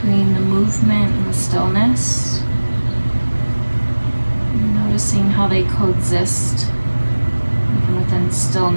the movement and the stillness. Noticing how they coexist. Even within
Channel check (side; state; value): both; inverted; correlation -1.00